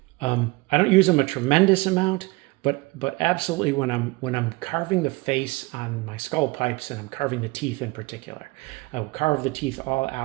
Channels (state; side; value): quieter; left; 23.5 dB